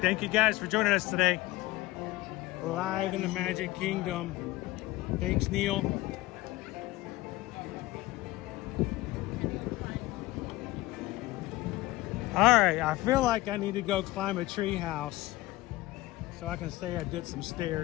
Thank you guys for joining us today. Live in the Magic Kingdom. Thanks, Neil. All right, I feel like I need to go climb a tree house so I can say I did some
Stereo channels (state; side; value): quieter; right; 18.6 dB